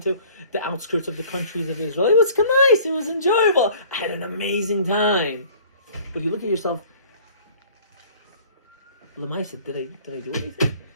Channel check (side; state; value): both; inverted; correlation -0.51